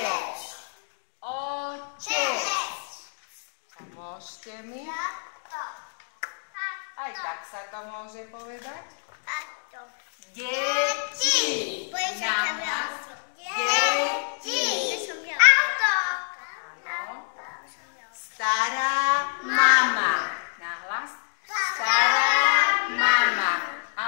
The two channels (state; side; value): silent; right; digital silence